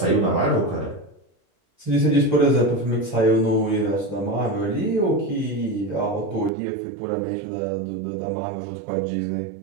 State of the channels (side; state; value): left; drops out; at 6.5 s